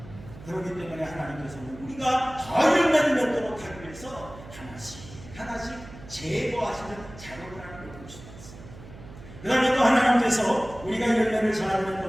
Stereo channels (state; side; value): noise; right; hum, 17 dB below the sound